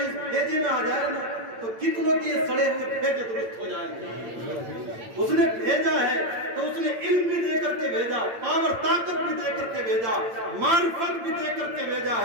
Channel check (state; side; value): late; left; 8.8 ms